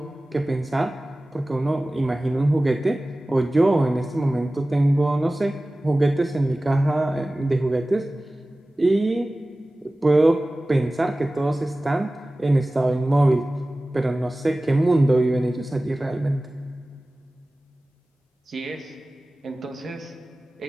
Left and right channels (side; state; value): both; normal; correlation 0.97